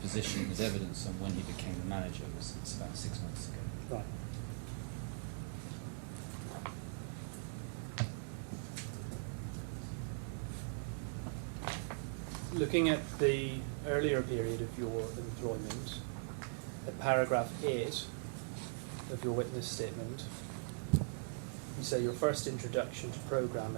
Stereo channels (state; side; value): silent; left; digital silence